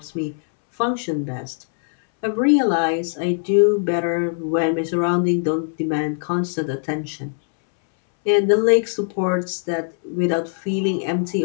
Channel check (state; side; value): silent; right; 63 dB below the other